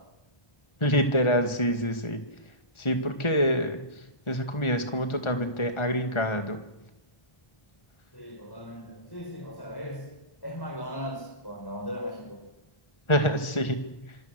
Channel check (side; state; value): right; late; 1.4 ms